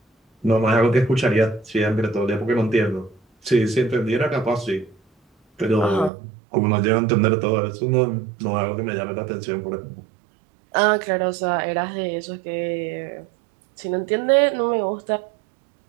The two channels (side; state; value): left; drops out; at 6.1 s